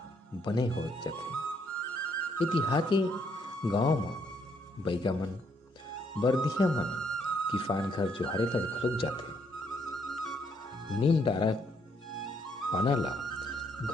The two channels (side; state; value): both; normal; correlation 0.71